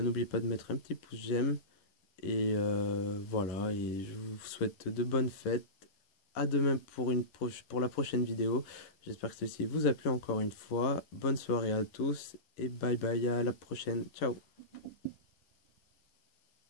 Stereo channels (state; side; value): late; right; 10 ms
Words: pas de mettre un petit pouce j'aime. Et voilà, et je vous souhaite de bonnes fêtes. À demain pour la prochaine vidéo. J'espère que ceci vous a plu encore une fois. Bonne soirée à tous et bye bye, à la prochaine. Ciao.